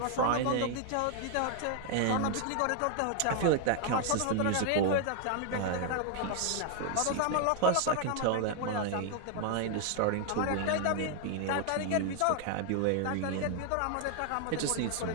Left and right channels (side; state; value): both; different; correlation 0.00